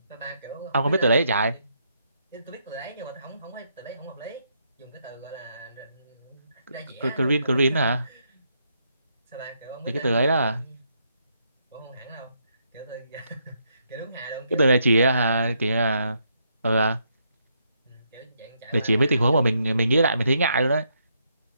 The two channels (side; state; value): both; inverted; correlation -0.77